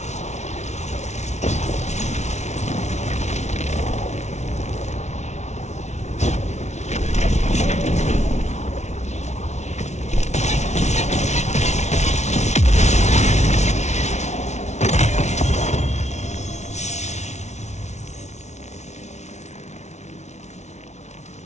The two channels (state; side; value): late; right; 0.32 ms